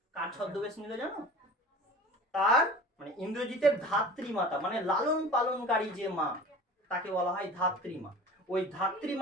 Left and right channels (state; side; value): normal; both; correlation 0.40